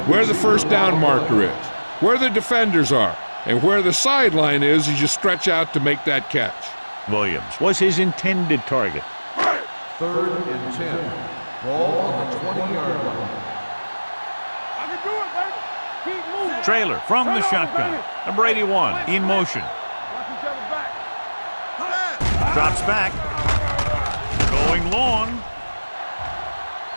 Where the first down marker is, where the defenders are, and where the sideline is as you stretch out to make that catch. Williams was his intended target. Third and 10. Ball on the 20-yard line. I can do it, baby. Keep moving. Trailer from the shotgun. Number 81 in motion. Watch each other back. Drops back. Going long.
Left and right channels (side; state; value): both; inverted; correlation -1.00